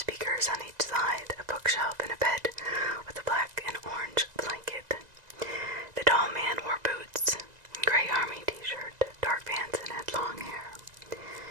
on each side, a bookshelf, and a bed with a black and orange blanket. The tall man wore boots, gray army t-shirt, dark pants, and had long hair.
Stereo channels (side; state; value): left; late; 1.9 ms